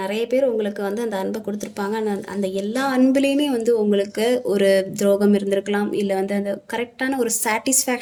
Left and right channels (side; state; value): both; identical; correlation 1.00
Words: நிறைய பேர் உங்களுக்கு வந்து அந்த அன்பை கொடுத்துருப்பாங்க. அந்த எல்லா அன்புலேயுமே வந்து உங்களுக்கு ஒரு துரோகம் இருந்திருக்கலாம். இல்லை வந்து அந்த கரெக்டான ஒரு